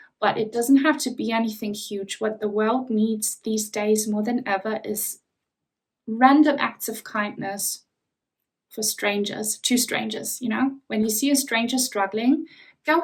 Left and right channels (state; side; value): identical; both; correlation 1.00